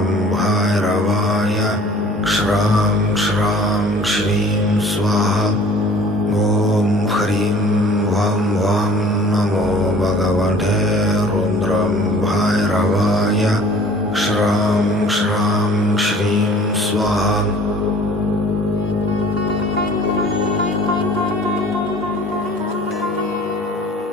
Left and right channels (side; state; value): both; normal; correlation 0.50